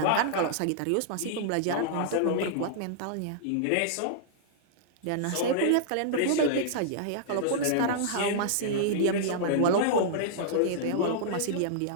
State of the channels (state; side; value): different; both; correlation -0.02